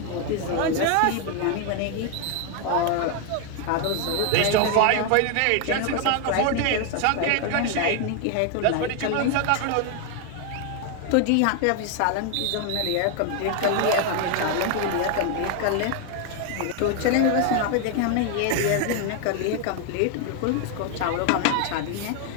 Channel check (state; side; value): different; both; correlation 0.01